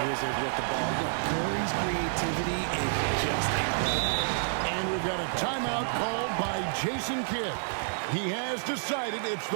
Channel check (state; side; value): silent; left; digital silence